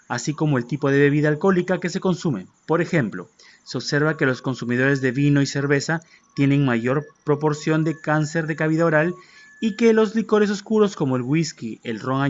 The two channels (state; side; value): identical; both; correlation 1.00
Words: así como el tipo de bebida alcohólica que se consume. Por ejemplo, se observa que los consumidores de vino y cerveza tienen mayor proporción de cáncer de cavidad oral y que los licores oscuros como el whisky, el ron